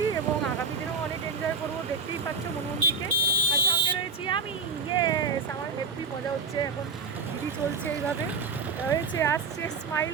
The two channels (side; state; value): left; quieter; 5.0 dB